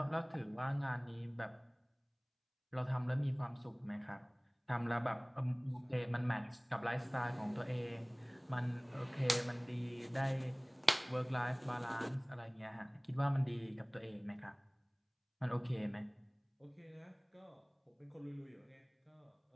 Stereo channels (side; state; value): both; identical; correlation 1.00